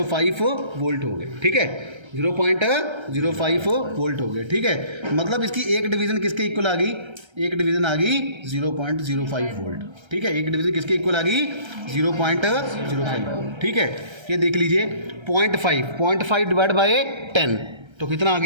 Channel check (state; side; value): late; left; 1.3 ms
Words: वोल्ट हो गए। ठीक है, 0.05 वोल्ट हो गए। ठीक है, मतलब इसकी एक डिवीज़न किसके इक्वल आ गई, एक डिवीज़न आ गई 0.05 वोल्ट। ठीक है, एक डिवीज़न किसके इक्वल आ गई, 0.05 वोल्ट। ठीक है, ये देख लीजिए 0.5 डिवाइड बाय 10, तो कितना आ